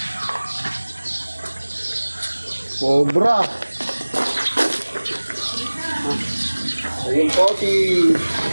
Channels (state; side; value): inverted; both; correlation -1.00